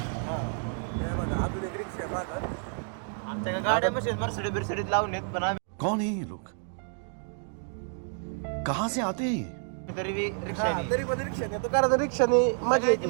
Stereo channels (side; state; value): left; silent; 58 dB below the other